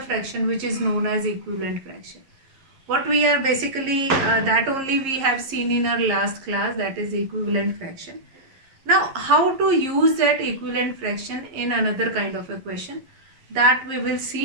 fraction which is known as equivalent fraction. What we are basically that only we have seen in our last class, that is equivalent fraction. Now how to use that equivalent fraction in another kind of a question, that we will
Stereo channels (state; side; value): late; left; 11 ms